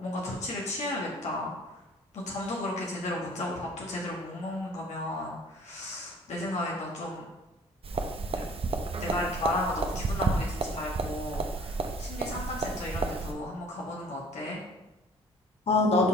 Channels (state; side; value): normal; both; correlation 0.51